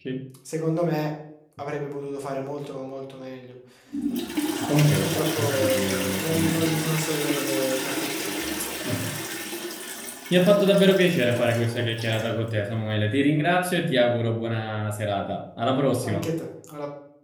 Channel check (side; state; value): both; identical; correlation 1.00